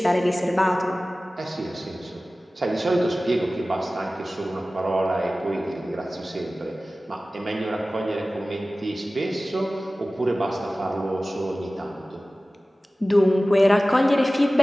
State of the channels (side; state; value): both; normal; correlation 0.97